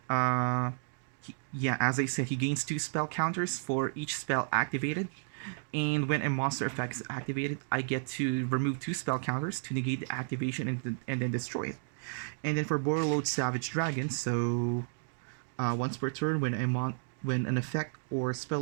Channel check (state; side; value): silent; left; digital silence